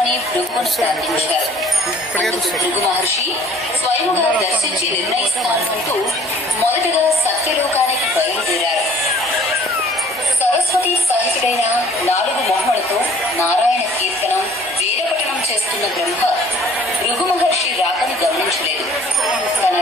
భృగువును ప్రార్థించారు. అందుకు భృగు మహర్షి స్వయముగా దర్శించి నిర్ణయిస్తానంటూ మొదటగా సత్యలోకానికి బయలుదేరారు. సరస్వతి సహితుడైన 4 మొహములతో నారాయణ కీర్తనం, వేదపఠనం చేస్తున్న బ్రహ్మ భృగు మహర్షి రాకను గమనించలేదు. తన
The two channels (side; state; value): both; normal; correlation 0.54